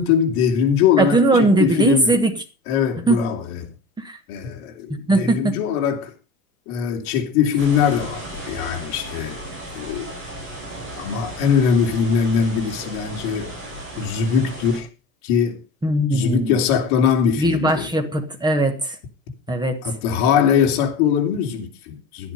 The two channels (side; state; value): right; quieter; 3.5 dB